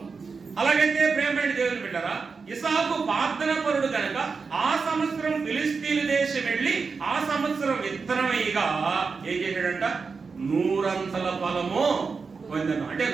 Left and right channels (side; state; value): left; quieter; 4.9 dB